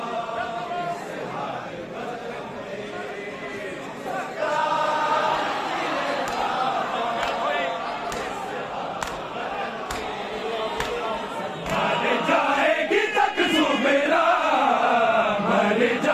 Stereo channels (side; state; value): both; identical; correlation 1.00